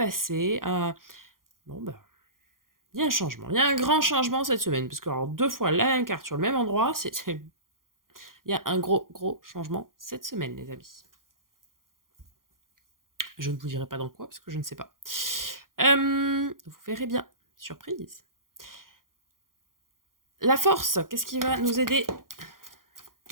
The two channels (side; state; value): left; late; 0.91 ms